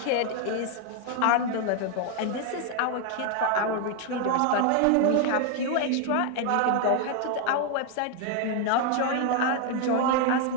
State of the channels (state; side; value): different; both; correlation 0.01